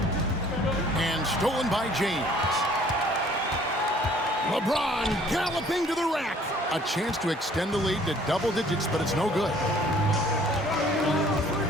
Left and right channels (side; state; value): both; normal; correlation 0.56